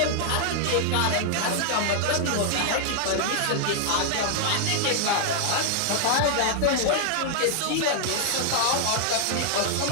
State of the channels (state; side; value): different; both; correlation -0.01